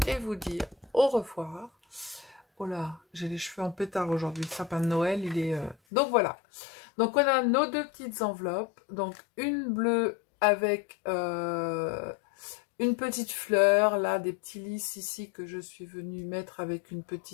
et vous dire au revoir. Oh là, j'ai les cheveux en pétard aujourd'hui, le sapin de Noël, il est... Donc, voilà. Donc, on a nos deux petites enveloppes. Donc, une bleue avec une petite fleur, là, des petits lys ici que je suis venue mettre avec une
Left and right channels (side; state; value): right; drops out; at 5.8 s